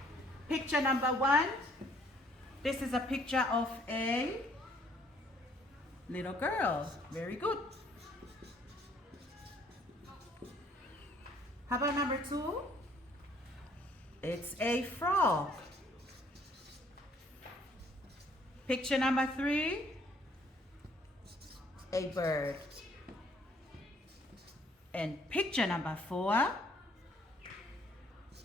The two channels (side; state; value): both; normal; correlation 0.62